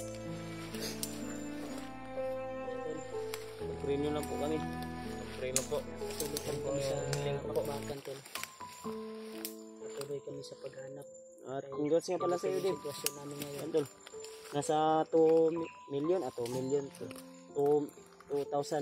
Ipag-pray nyo lang po kami. Pray na po. Patuloy kami sa pakbakan tol. Patuloy kami sa paghanap. At congrats nga pala sa iyo, Dave. Sitwasyon namin ngayon. Tol. Nasa 2 million, 2 million to.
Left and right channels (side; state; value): both; identical; correlation 1.00